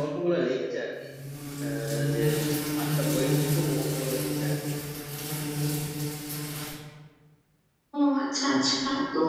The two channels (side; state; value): both; identical; correlation 1.00